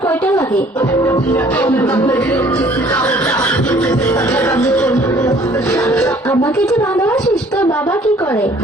কয়টা লাগে? আমাকে যে ভালোবাসিস, তোর বাবা কি করে?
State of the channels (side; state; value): both; normal; correlation 0.56